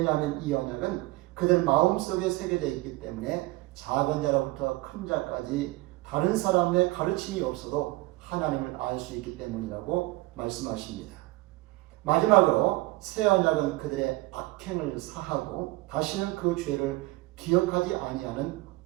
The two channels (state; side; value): quieter; left; 20.7 dB